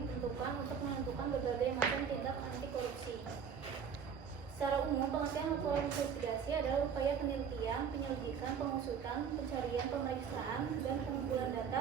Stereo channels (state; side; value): quieter; left; 6.9 dB